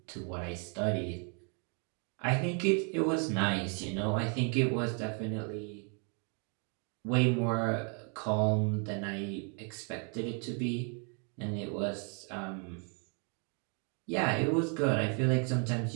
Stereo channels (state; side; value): quieter; left; 38.4 dB